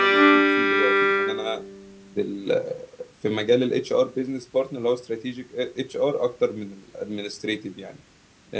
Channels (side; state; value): both; identical; correlation 1.00